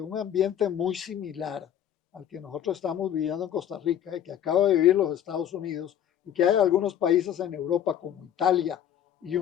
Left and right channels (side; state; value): right; quieter; 10.2 dB